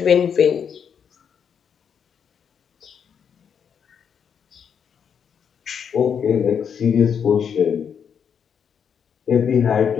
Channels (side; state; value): right; quieter; 7.5 dB